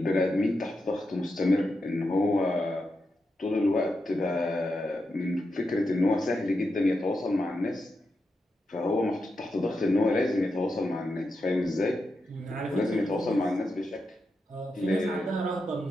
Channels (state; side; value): normal; both; correlation 0.87